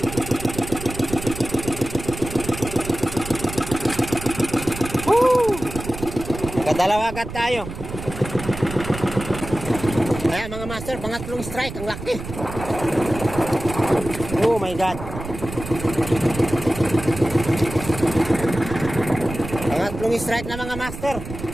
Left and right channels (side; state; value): right; noise; rumble, 10 dB below the sound